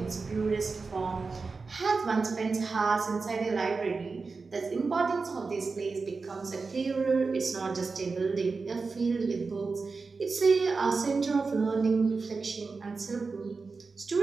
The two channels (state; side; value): quieter; left; 4.3 dB